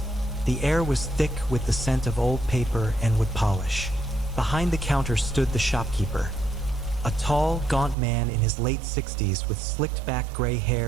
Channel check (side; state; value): left; drops out; at 8.0 s